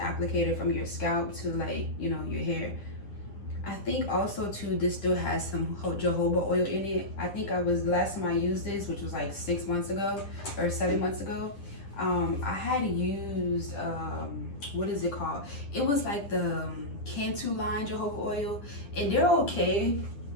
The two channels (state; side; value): late; right; 10 ms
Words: from your scalp to, like, you know, your hair. I think also too, this still has some jojoba oil in it. I think last time I used this, which was like 6 months ago or 7 months ago, I had used what is it called? It was like the Cantu line jojoba oil, and they're okay.